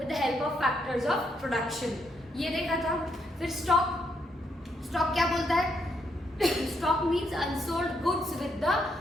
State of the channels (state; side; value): normal; both; correlation 0.76